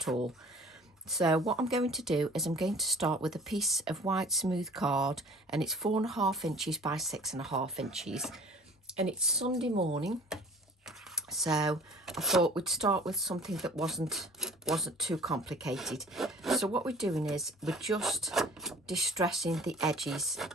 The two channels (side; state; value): both; normal; correlation 0.49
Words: all. So what I'm going to do is I'm going to start with a piece of white smooth card, and it's 4.5 inches by 6.5 inches. And it's Sunday morning, so I thought we'd start with something that wasn't too complicated. So what we're doing is we're just distressing the edges